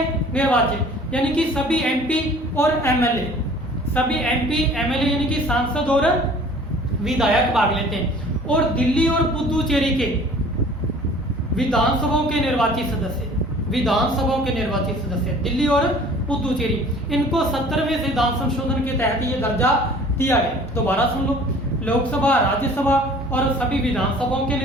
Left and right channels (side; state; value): both; normal; correlation 0.49